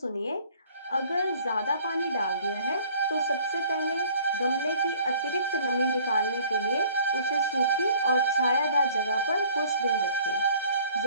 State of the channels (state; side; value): inverted; both; correlation -0.54